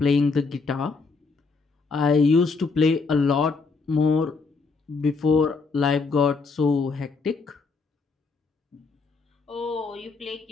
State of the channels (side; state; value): right; quieter; 4.4 dB